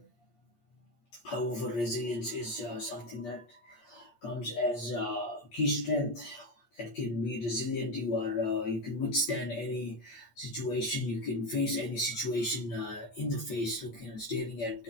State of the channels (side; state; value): right; late; 8.5 ms